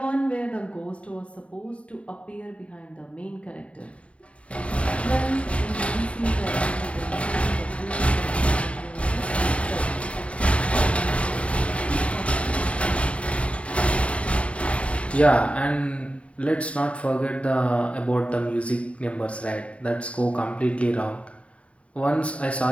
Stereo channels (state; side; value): late; right; 0.063 ms